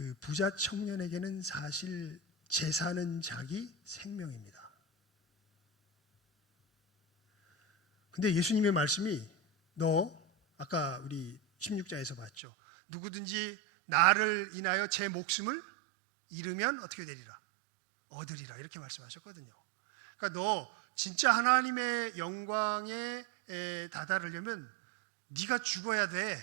부자 청년에게는 사실 재산은 자기 생명입니다. 근데 예수님의 말씀이 너 아까 우리 16장에서 봤죠. 누구든지 나를 인하여 제 목숨을 잃으면 어떻게 되리라? 얻으리라, 이렇게 말씀하셨거든요. 그러니까 너 진짜 하나님의 영광에 다다르려면 네가 죽어야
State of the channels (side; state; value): left; drops out; at 12.3 s